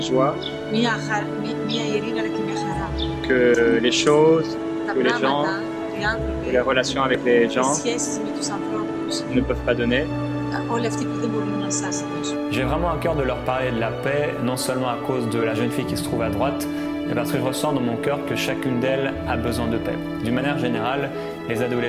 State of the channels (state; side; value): identical; both; correlation 1.00